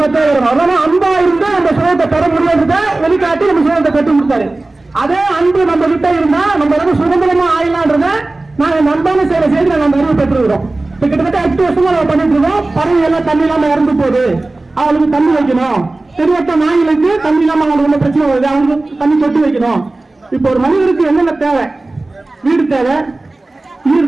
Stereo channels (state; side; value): quieter; left; 3.0 dB